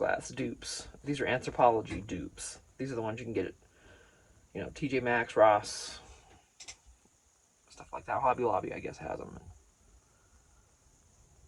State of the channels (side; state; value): both; identical; correlation 1.00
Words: dupes. These are Anthropology dupes. These are the ones you can get at, you know, TJ Maxx, Ross, stuff like that. Hobby Lobby, I guess, has them.